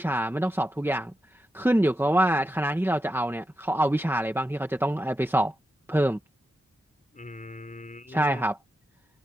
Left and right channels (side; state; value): both; normal; correlation 0.88